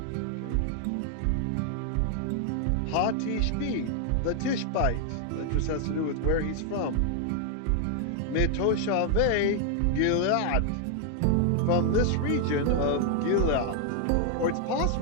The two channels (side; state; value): both; different; correlation 0.00